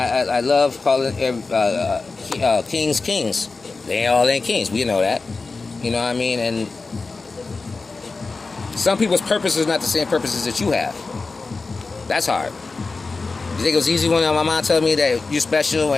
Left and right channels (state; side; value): quieter; right; 4.0 dB